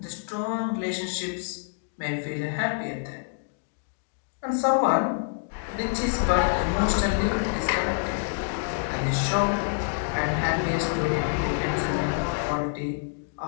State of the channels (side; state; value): right; silent; digital silence